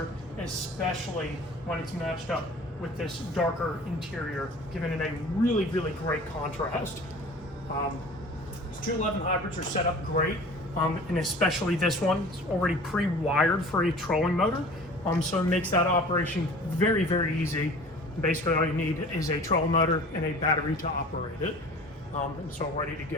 especially when it's matched up with this darker interior, giving it a really great contrast. These 211 hybrids are set up great, and especially this one, it's already pre-wired for a trolling motor, so it makes that operation very easy. Basically all you need is a trolling motor and a battery to operate it, and it's all ready to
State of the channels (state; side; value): normal; both; correlation 0.43